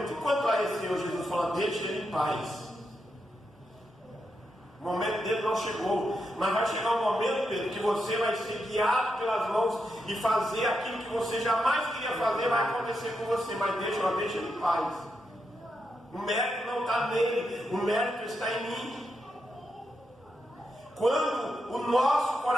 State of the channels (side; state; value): both; normal; correlation 0.85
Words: e quanto a esse Senhor? Jesus fala: deixa ele em paz. O momento dele não chegou. Mas vai chegar um momento, Pedro, que você vai ser guiado pelas mãos e fazer aquilo que você jamais queria fazer, vai acontecer com você. Mas deixa ele em paz. O mérito não está nele, o mérito está em mim. Quando o nosso